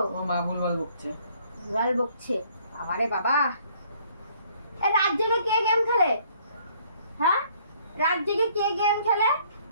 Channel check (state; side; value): inverted; both; correlation -0.61